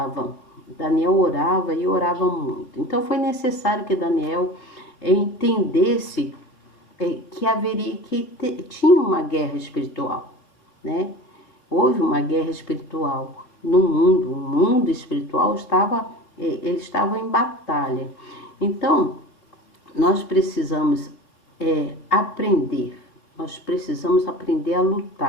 Daniel orava e orava muito. Então foi necessário que Daniel entendesse tinha uma guerra espiritual, né? Houve uma guerra espiritual no mundo. O mundo espiritual ele estava em batalha. Então, nós precisamos aprender. Nós precisamos aprender a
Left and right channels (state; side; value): late; right; 3.6 ms